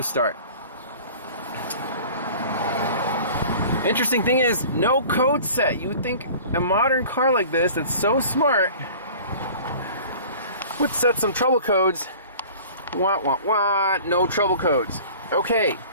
Interesting thing is, no code set. You would think a modern car like this that's so smart would set some trouble codes. Wah, wah, wah, no trouble codes. Okay.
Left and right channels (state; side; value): inverted; both; correlation -0.44